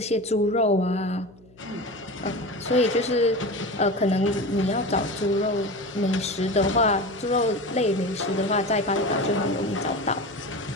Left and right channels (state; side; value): noise; left; hum, 27 dB below the sound